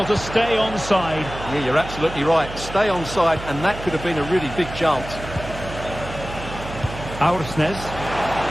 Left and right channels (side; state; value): right; noise; hum, 11 dB below the sound